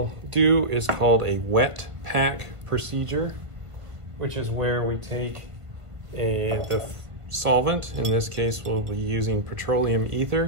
do is called a wet pack procedure, which is where we take the solvent. In this case, we'll be using petroleum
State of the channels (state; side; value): late; left; 1.5 ms